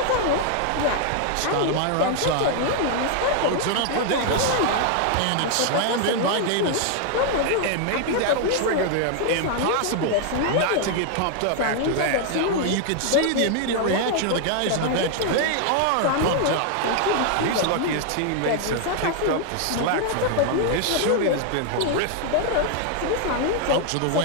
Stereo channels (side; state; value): both; different; correlation 0.00